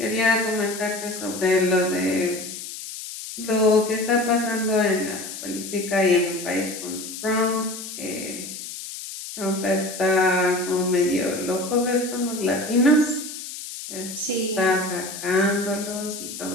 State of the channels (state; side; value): noise; left; hiss, 10 dB below the sound